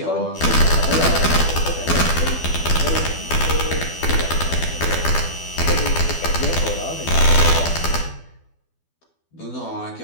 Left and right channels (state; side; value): late; right; 12 ms